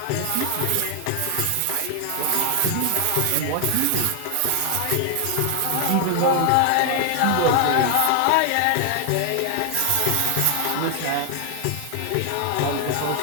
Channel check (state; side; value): different; both; correlation 0.00